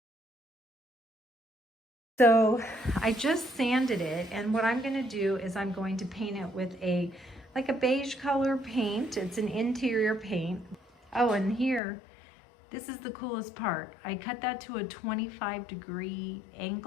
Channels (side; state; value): right; drops out; at 11.8 s